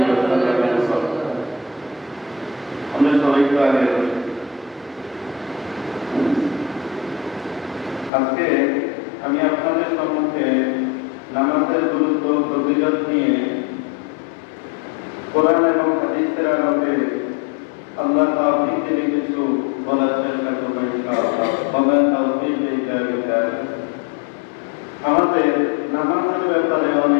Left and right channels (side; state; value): right; drops out; at 8.1 s